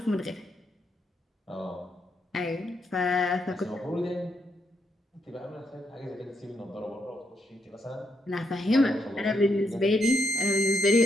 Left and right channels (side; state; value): both; normal; correlation 0.79